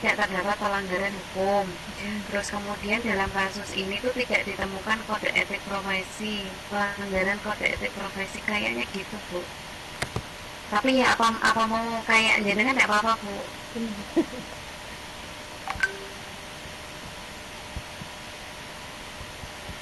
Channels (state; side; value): identical; both; correlation 1.00